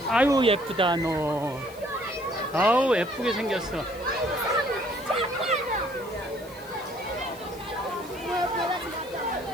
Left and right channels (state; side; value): noise; left; hiss, 22 dB below the sound